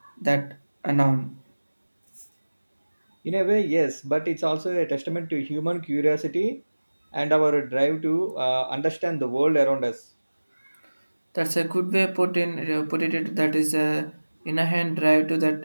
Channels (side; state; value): both; inverted; correlation -1.00